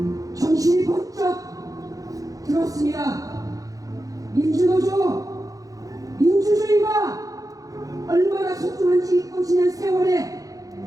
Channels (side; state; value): left; late; 0.17 ms